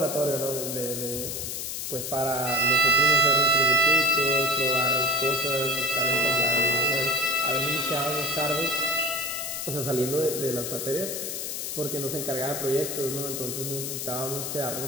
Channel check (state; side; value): noise; left; hiss, 4 dB below the sound